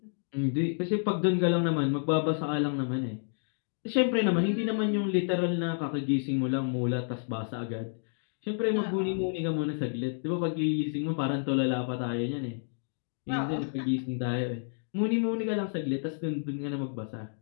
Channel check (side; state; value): right; silent; digital silence